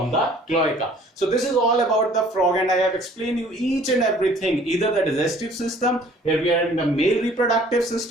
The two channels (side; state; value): both; normal; correlation 0.54